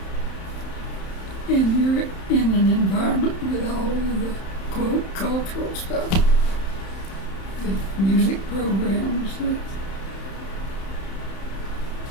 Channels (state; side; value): late; right; 31 ms